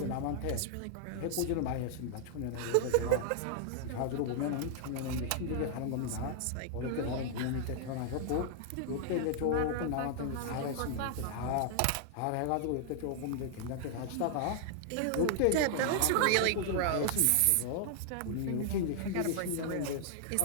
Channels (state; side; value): different; both; correlation -0.01